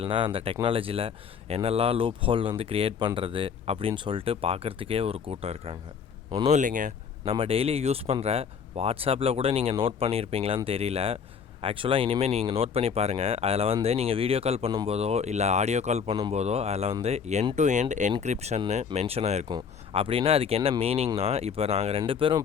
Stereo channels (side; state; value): right; quieter; 6.8 dB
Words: அந்த டெக்னாலஜியில் என்னெல்லாம் லூப் ஹோல் க்ரியேட் பண்ணுறது அப்படின்னு சொல்லிட்டு பார்க்குறதுக்கே ஒரு கூட்டம் இருக்காங்க. ஒன்றும் இல்லைங்க, நம்ம டெய்லி யூஸ் பண்ணுற வாட்ஸ்அப்பில் கூட நீங்கள் நோட் பண்ணியிருப்பீங்களான்னு தெரியல. ஆக்சுவலாக இனிமேல் நீங்கள் நோட் பண்ணி பாருங்கள். அதில் நீங்கள் வீடியோ கால் பண்ணும்போதோ இல்லை ஆடியோ கால் பண்ணும்போதோ அதில் எண்ட் டு எண்ட் என்கிரிப்ஷன்னு மென்ஷன் ஆகிருக்கும். அப்படின்னா அதுக்கு என்ன மீனிங்னா, இப்போ நாங்கள் 2